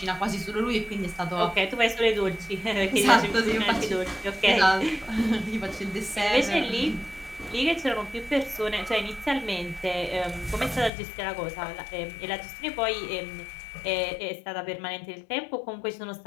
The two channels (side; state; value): right; drops out; at 10.9 s